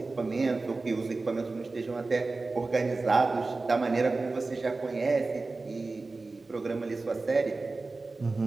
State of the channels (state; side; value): quieter; left; 3.6 dB